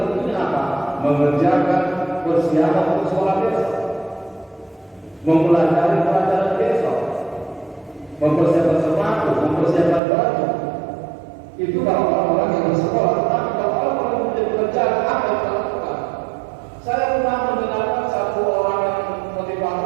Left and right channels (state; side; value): drops out; left; at 10.0 s